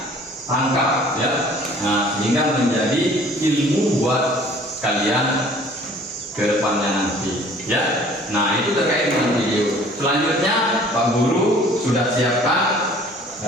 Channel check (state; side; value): normal; both; correlation 0.52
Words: tangkap ya. Sehingga menjadi ilmu buat kalian ke depannya nanti ya. Nah, itu terkait dengan video. Selanjutnya Pak Guru sudah siapkan